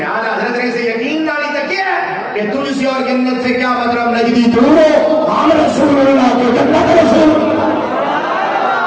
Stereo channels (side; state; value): both; identical; correlation 1.00